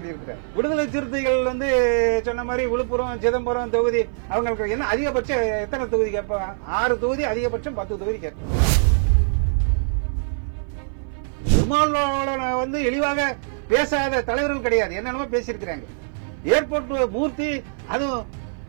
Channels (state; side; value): silent; left; 58 dB below the other